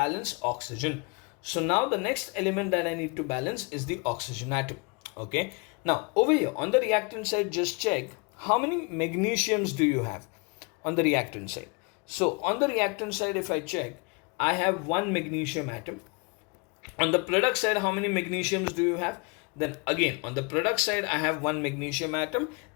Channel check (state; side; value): quieter; right; 31.3 dB